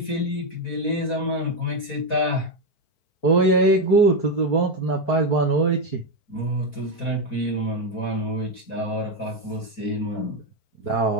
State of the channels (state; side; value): late; right; 4.5 ms